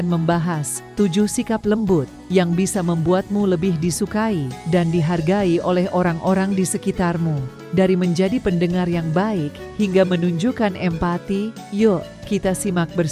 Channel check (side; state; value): both; identical; correlation 1.00